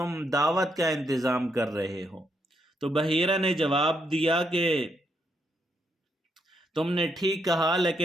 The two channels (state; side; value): normal; both; correlation 0.77